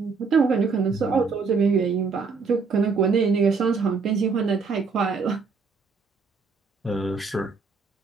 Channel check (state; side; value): quieter; left; 4.8 dB